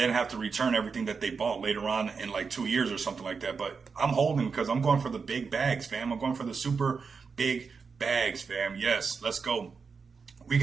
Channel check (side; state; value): left; quieter; 5.3 dB